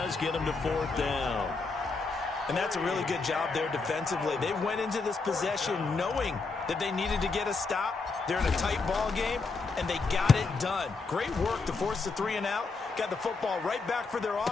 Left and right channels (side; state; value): right; quieter; 4.2 dB